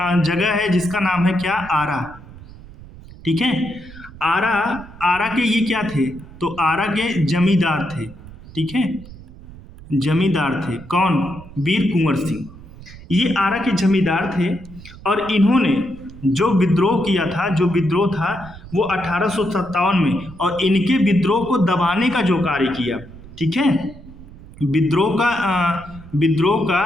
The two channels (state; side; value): noise; right; rumble, 18 dB below the sound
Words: जगह है जिसका नाम है क्या? आरा। ठीक है, आरा के ये क्या थे? तो आरा के जमींदार थे। ठीक है, जमींदार थे। कौन? वीर कुंवर सिंह। ये आरा के जमींदार थे और इन्होंने जो विद्रोह किया था, जो विद्रोह था वो 1857 में, और इनके विद्रोह को दबाने का जो कार्य किया। ठीक है, विद्रोह का